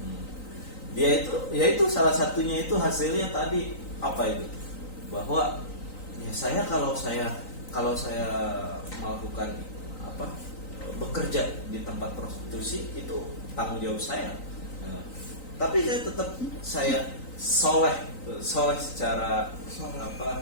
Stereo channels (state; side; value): late; right; 3.9 ms